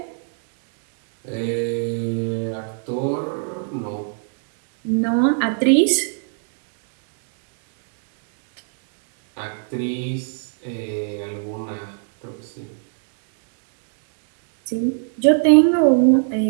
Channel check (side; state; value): left; silent; digital silence